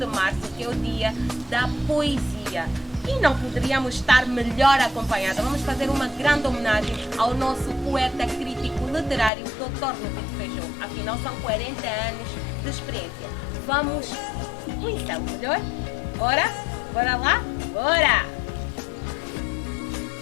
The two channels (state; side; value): drops out; right; at 9.3 s